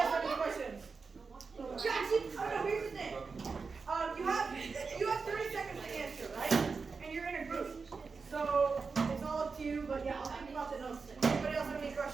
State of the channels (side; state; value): left; quieter; 4.8 dB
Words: have any questions? Jackson, oh no, here's the thing. You have 30 seconds to answer, right? And you're in a group. So it's all up to you, but yeah, I'll think about the notes. Anybody else have any